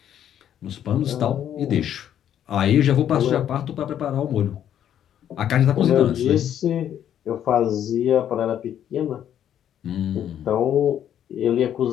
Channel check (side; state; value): right; quieter; 10.2 dB